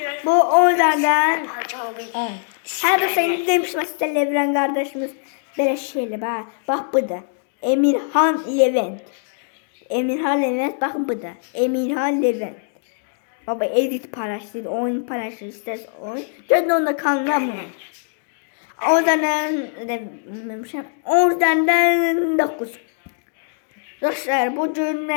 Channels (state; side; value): silent; right; digital silence